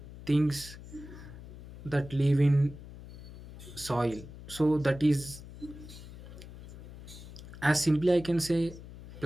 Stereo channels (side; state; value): left; noise; hum, 15 dB below the sound